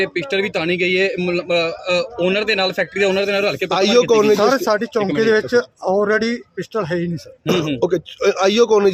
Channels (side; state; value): both; identical; correlation 1.00